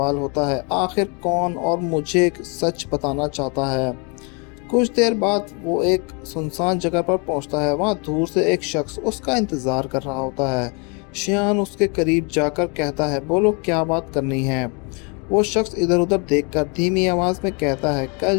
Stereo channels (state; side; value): quieter; right; 33.6 dB